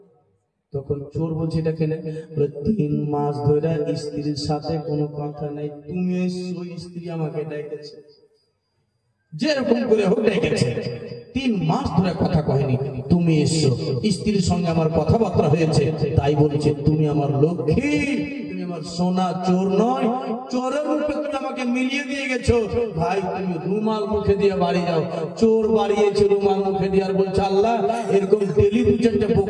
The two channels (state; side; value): identical; both; correlation 1.00